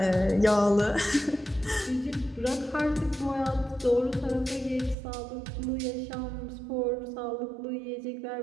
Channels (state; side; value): drops out; left; at 5.0 s